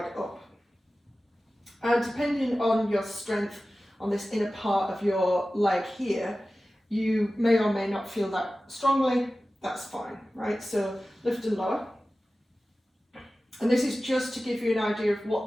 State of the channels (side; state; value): both; normal; correlation 0.96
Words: up. And depending on your strength on this inner part of your leg here, you may or may not feel that strongly. That's fine, right? So lift and lower. And this is just to give you an idea of